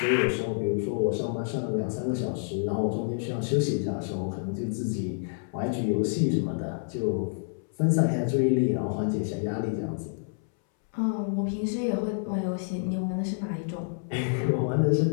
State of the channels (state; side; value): silent; right; 59 dB below the other